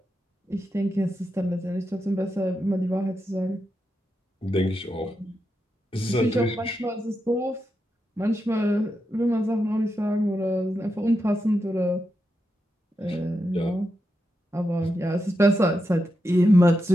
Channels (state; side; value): normal; both; correlation 0.86